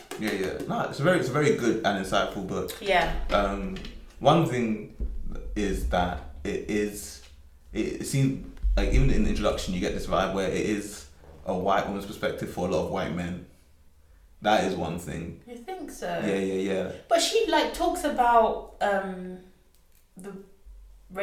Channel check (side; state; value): both; identical; correlation 1.00